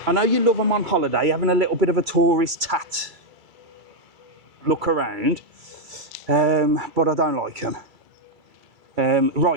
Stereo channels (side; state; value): left; late; 2.3 ms